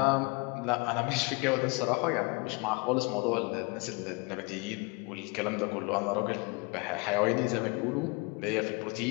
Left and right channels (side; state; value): right; quieter; 29.4 dB